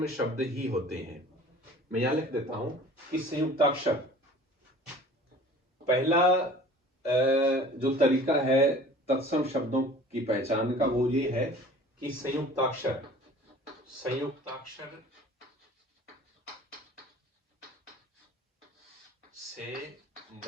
शब्द ही होते हैं। मैं यहां लिख देता हूं कि संयुक्ताक्षर, पहला जो तरीका है तत्सम शब्दों की पहचान का वो ये है कि संयुक्ताक्षर से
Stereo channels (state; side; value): normal; both; correlation 0.46